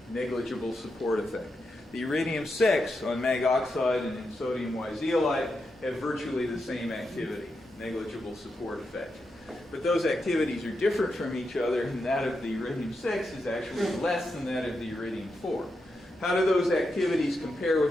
negligible support effect. The iridium-6 on mag oxide and in sodium Y-zeolite have virtually the same activity, negligible support effect. But those activities are different from each other, and that of the iridium-6 is actually less than that of the iridium-4. How do those activities compare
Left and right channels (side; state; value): both; normal; correlation 0.86